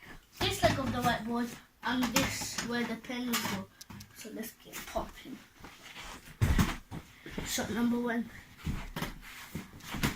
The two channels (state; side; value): identical; both; correlation 1.00